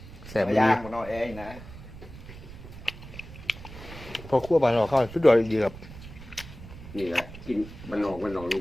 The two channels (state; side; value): noise; right; rumble, 15 dB below the sound